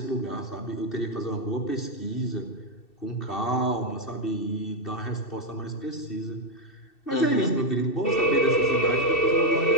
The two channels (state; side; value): late; right; 2.7 ms